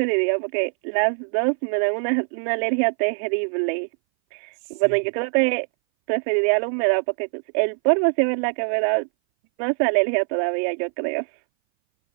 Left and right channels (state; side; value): silent; left; 60 dB below the other